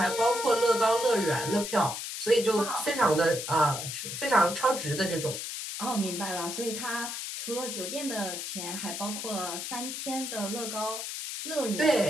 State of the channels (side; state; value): left; noise; hiss, 6 dB below the sound